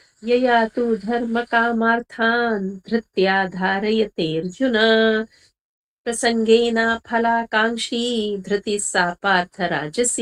यया तु धर्मकामार्थान् धृत्या धारयते अर्जुन प्रसंगेन फलाकांक्षी धृति सा पार्थ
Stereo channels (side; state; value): both; identical; correlation 1.00